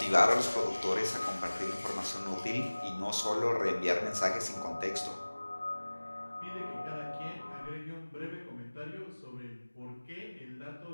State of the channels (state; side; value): inverted; both; correlation -1.00